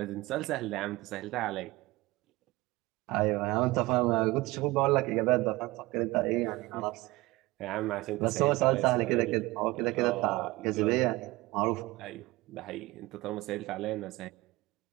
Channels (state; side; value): quieter; left; 20.7 dB